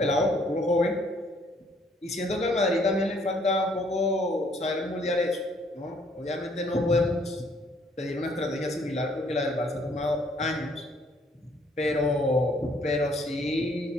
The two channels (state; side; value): normal; both; correlation 0.64